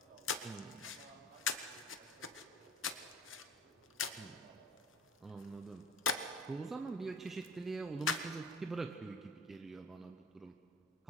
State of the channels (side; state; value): both; normal; correlation 0.41